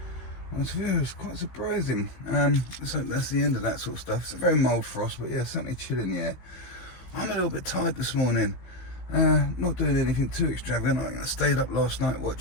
It was quite surprising. So that's the end of that sort of stuff. It's a very mild frost, but yeah, certainly chill in the air. I'm a little bit tired this morning. Not doing anything too extravagant. I stayed up last night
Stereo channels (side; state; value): right; late; 16 ms